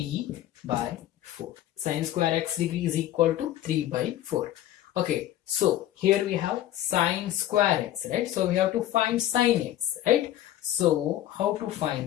by 4. Sine square x degree is equal to 3 by 4. Okay, so here we have sine square x, right? So we have to find sine x, right? So how to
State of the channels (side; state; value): right; quieter; 13.0 dB